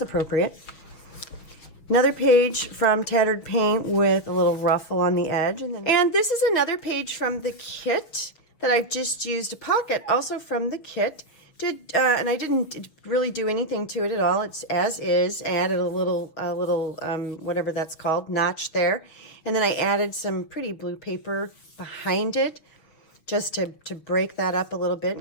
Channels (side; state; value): right; late; 6.4 ms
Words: appropriate. Another page from Tattered Paint with a little ruffle on the edge. And this is another page from the kit that I've just used a pocket, also from the kit. And I didn't really do anything to it at all. It's as is. I added a little whatever that's called, notch there. And then I added some pretty blue paper behind it, just to break that up a little bit